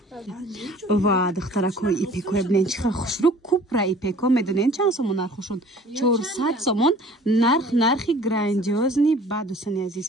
Ва духтаракои ипеко бинен чиха хушрӯ купра ипеко медонен чанд сомон нархошон? 400 сомон. Нархи грандиозни ба дӯстони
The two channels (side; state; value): both; normal; correlation 0.50